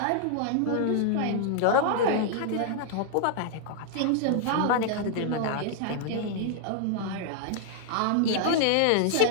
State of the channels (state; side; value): different; both; correlation -0.01